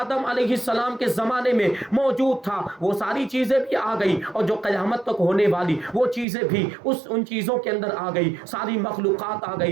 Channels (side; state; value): left; drops out; at 6.2 s